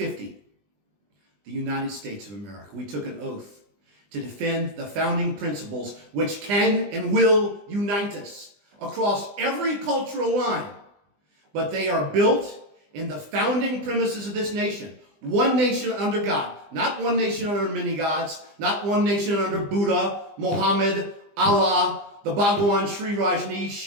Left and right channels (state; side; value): late; left; 20 ms